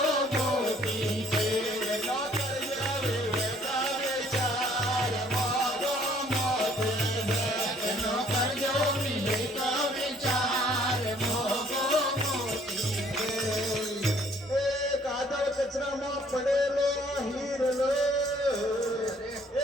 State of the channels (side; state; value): both; normal; correlation 0.60